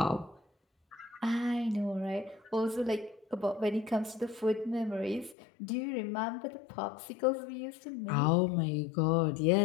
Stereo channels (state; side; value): drops out; right; at 5.4 s